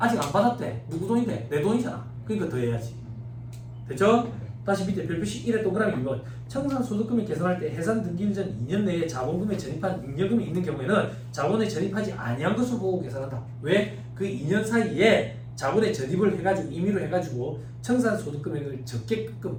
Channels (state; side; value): identical; both; correlation 1.00